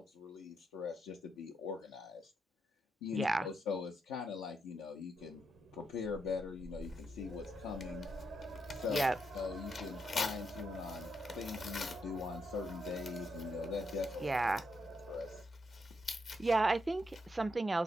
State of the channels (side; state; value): both; normal; correlation 0.81